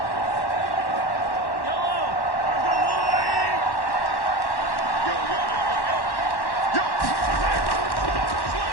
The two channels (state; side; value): late; right; 1.1 ms